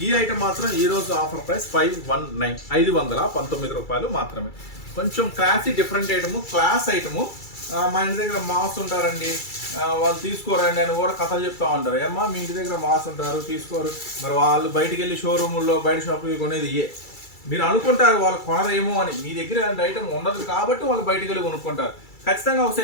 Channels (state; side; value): late; right; 2.3 ms